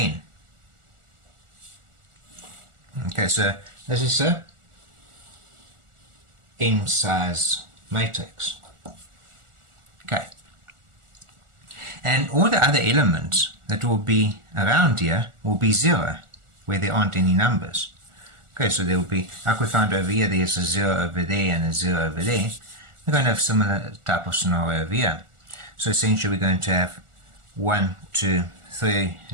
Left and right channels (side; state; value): left; late; 1.4 ms